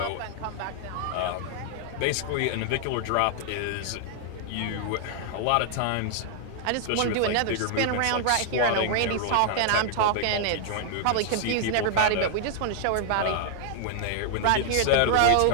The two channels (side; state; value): both; different; correlation -0.01